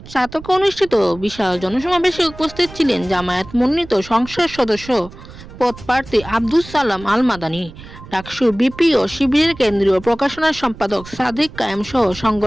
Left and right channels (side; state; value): right; noise; rumble, 17 dB below the sound